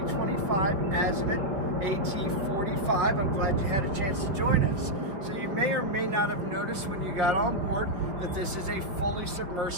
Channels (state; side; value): late; left; 5.3 ms